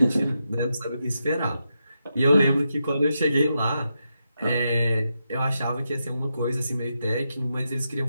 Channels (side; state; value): both; inverted; correlation -0.86